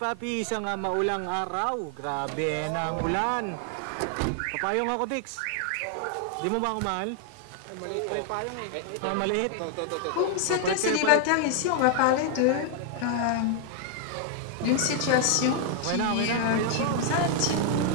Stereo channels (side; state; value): both; different; correlation 0.00